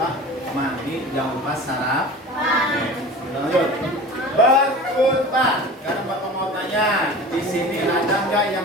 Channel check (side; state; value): both; normal; correlation 0.37